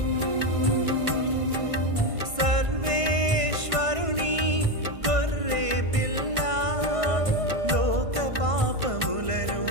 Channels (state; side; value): late; left; 1.5 ms